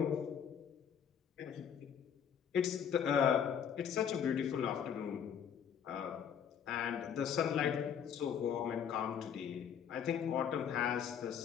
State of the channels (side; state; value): right; quieter; 8.1 dB